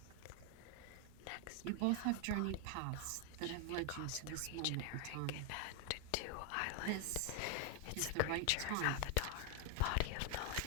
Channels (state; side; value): different; both; correlation 0.01